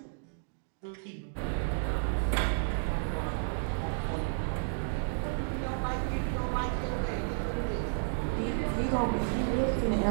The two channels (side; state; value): left; silent; digital silence